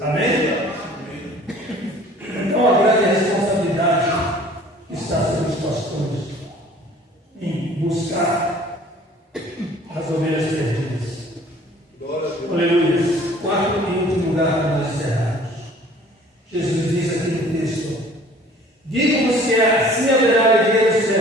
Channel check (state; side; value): normal; both; correlation 0.51